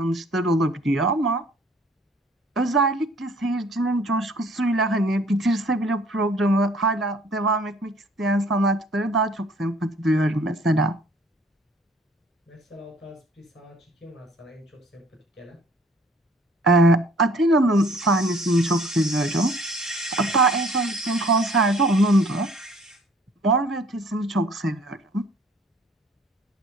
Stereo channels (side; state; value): both; normal; correlation 0.56